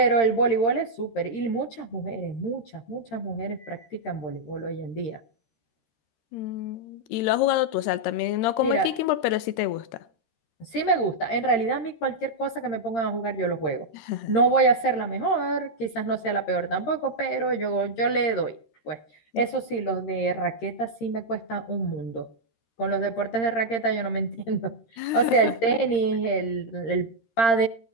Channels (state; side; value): late; right; 13 ms